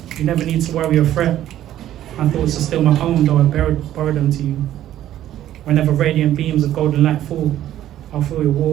You never need to worry or fret. My thoughts are still my own, though I borrowed them to you. Whenever radiant beams of golden light fall, I'll feel your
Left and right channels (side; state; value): left; quieter; 12.4 dB